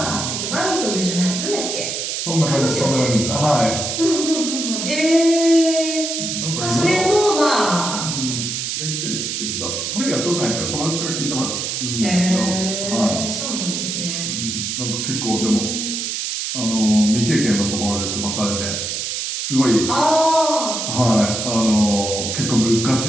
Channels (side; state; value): right; noise; hiss, 3 dB below the sound